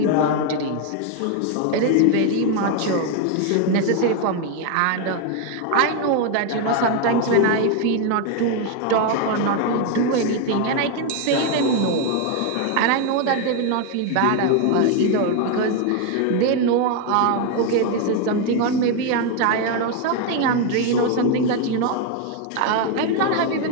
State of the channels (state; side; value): different; both; correlation 0.01